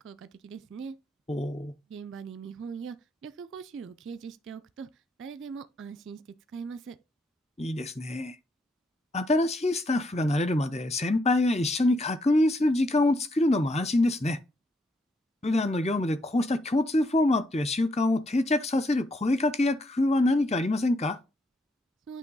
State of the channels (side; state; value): both; normal; correlation 0.75